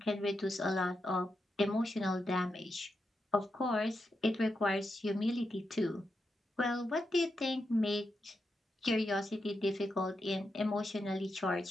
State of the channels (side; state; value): both; normal; correlation 0.86